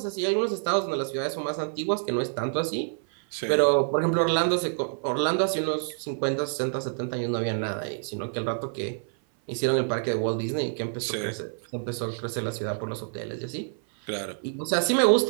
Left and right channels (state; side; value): silent; left; 56 dB below the other